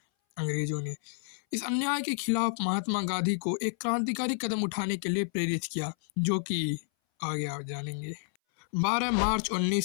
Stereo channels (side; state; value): right; silent; 58 dB below the other